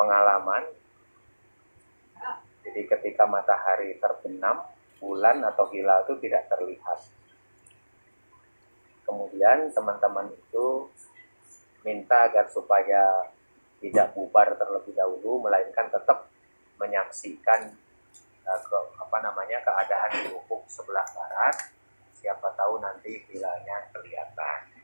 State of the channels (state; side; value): inverted; both; correlation -1.00